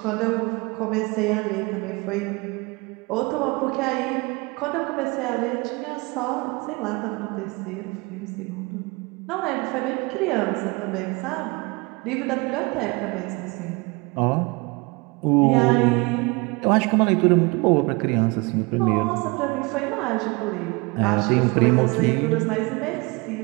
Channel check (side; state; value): left; quieter; 26.8 dB